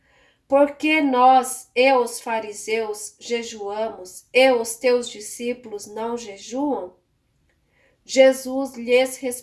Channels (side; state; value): both; identical; correlation 1.00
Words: Por que nós e os fariseus jejuamos e os teus discípulos não jejuam? Jesus lhes